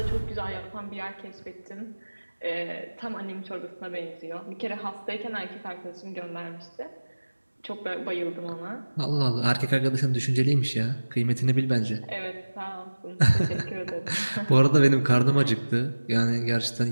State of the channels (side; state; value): both; inverted; correlation -1.00